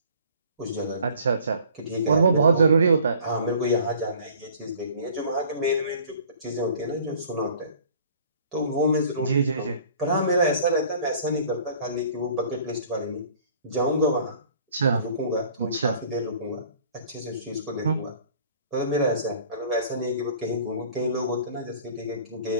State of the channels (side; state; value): both; inverted; correlation -0.51